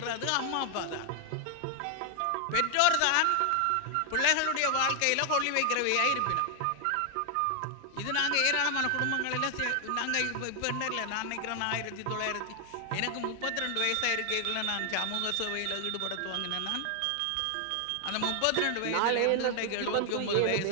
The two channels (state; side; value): different; both; correlation 0.00